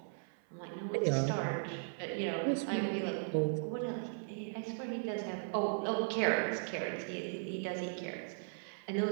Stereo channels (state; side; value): silent; left; 53 dB below the other